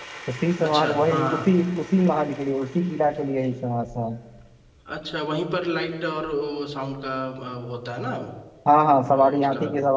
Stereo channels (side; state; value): both; identical; correlation 1.00